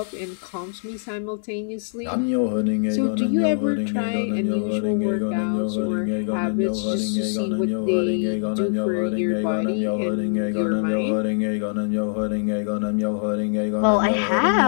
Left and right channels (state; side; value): silent; right; 63 dB below the other